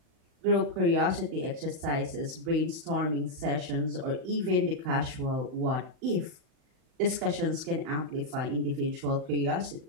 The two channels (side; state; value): left; late; 38 ms